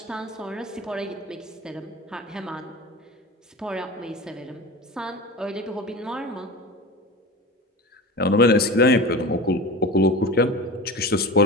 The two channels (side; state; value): both; normal; correlation 0.31